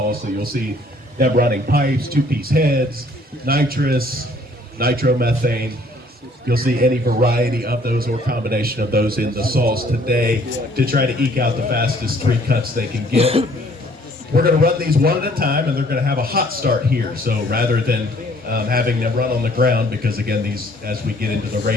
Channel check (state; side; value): normal; both; correlation 0.60